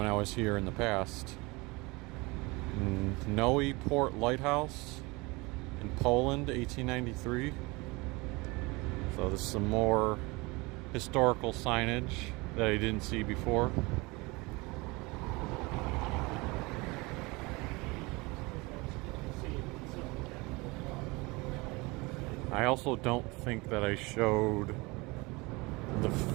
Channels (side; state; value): left; quieter; 24.7 dB